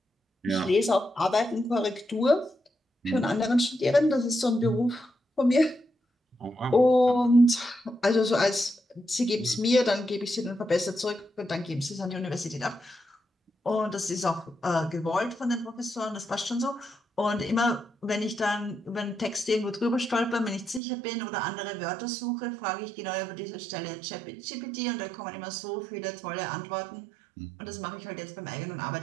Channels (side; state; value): left; drops out; at 20.8 s